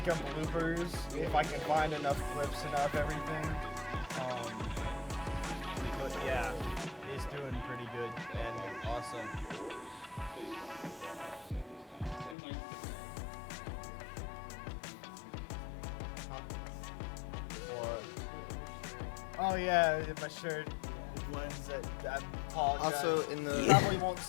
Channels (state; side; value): drops out; right; at 12.4 s